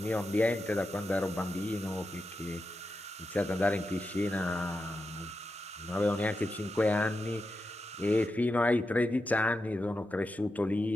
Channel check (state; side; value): normal; both; correlation 0.88